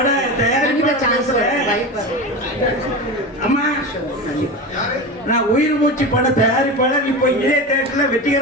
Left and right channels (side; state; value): both; normal; correlation 0.25